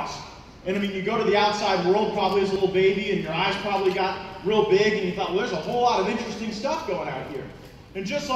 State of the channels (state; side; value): identical; both; correlation 1.00